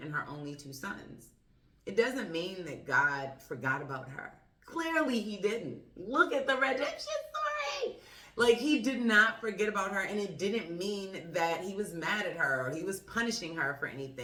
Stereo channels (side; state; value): both; identical; correlation 1.00